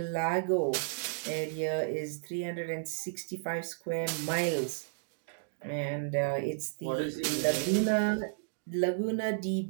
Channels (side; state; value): left; silent; digital silence